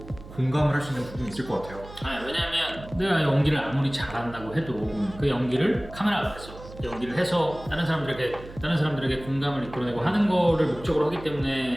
공감을 할 수 있는 부분이 있을 것 같아요. 왜냐하면 내가 연기를 아무리 잘한다고 해도 그 연기를 카메라 앞에서 연기를 해서 다른 사람들에게 공감을 이끌어내고 하는 거를 목적으로 하기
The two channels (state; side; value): noise; right; hum, 16 dB below the sound